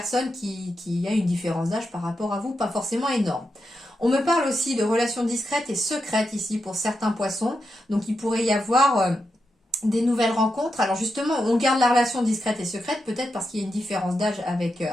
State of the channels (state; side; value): normal; both; correlation 0.86